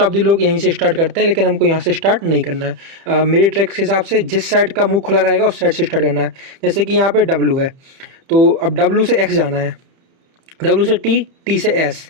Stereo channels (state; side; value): late; left; 31 ms